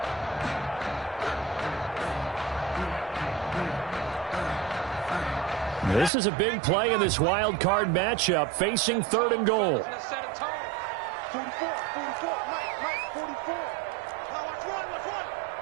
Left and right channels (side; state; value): left; drops out; at 6.1 s